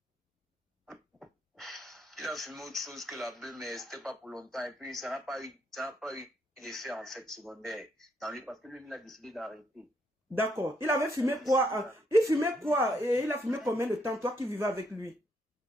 Il a fumé autre chose que la bœuf, mais c'était pas pour longtemps. Et puis, ça n'a pas eu d'effet, en fait, secondaire dans lui, parce que lui, il a décidé d'arrêter. D'accord. Il avait fumé quoi? Il fumait quoi? Et il a fumé combien de temps, toi qui vivais avec lui?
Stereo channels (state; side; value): normal; both; correlation 0.74